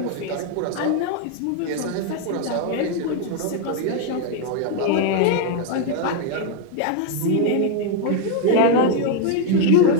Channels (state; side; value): different; both; correlation 0.00